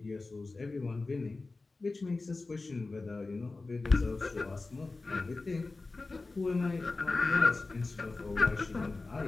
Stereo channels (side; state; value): right; quieter; 3.5 dB